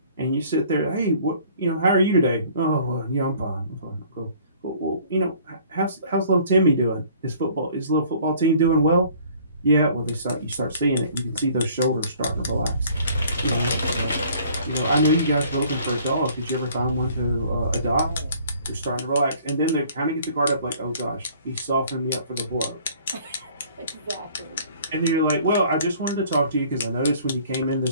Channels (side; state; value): both; inverted; correlation -0.55